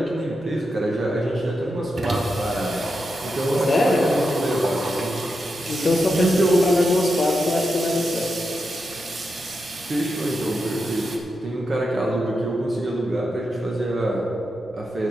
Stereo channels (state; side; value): noise; right; rumble, 29 dB below the sound